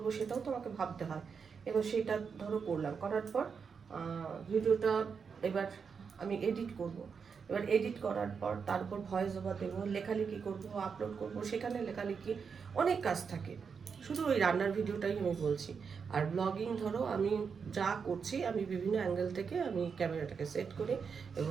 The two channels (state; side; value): quieter; left; 6.0 dB